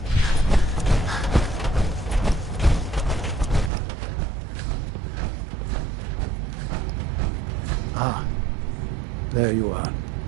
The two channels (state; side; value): drops out; left; at 3.7 s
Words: Ah, there you are.